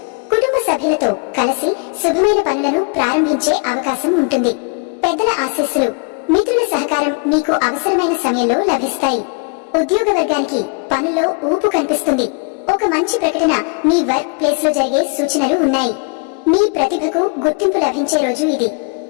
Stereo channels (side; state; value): right; quieter; 35.6 dB